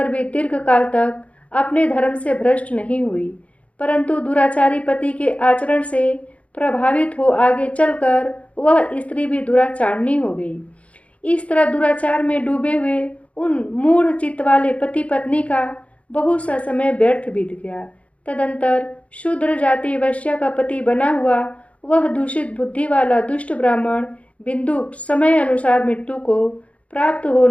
भी दीर्घ काल तक अपने धर्म से भ्रष्ट नहीं हुई, परंतु दुराचारी पति के आचरण से प्रभावित हो आगे चलकर वह स्त्री भी दुराचारणी हो गई। इस तरह दुराचार में डूबे हुए उन मूढ़ चित्त वाले पति पत्नी का बहुत सा समय व्यर्थ बीत गया। तदंतर शूद्र जाति वैश्या का पति बना हुआ वह दूषित बुद्धि वाला दुष्ट ब्राह्मण बिंदुक समय अनुसार मृत्यु को प्राप्त हो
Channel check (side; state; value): right; late; 0.065 ms